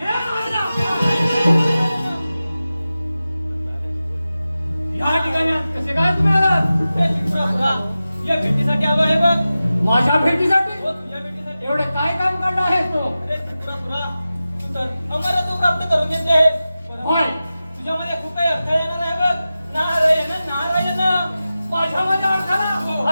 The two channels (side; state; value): both; inverted; correlation -0.94